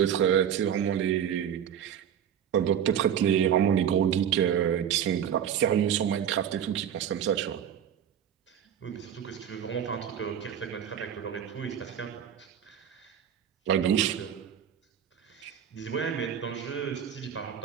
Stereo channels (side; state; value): left; quieter; 9.1 dB